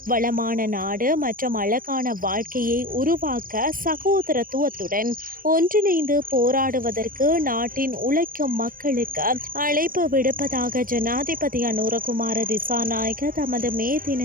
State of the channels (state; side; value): late; left; 0.41 ms